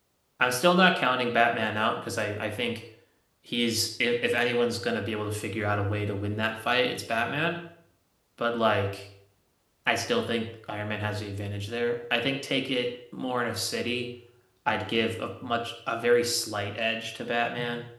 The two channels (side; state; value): both; identical; correlation 1.00